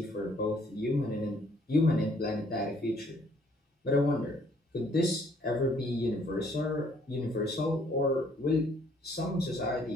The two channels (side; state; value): both; normal; correlation 0.63